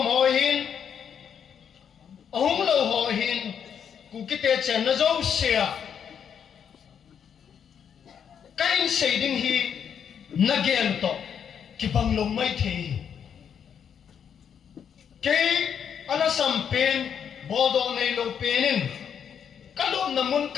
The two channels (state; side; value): quieter; right; 7.9 dB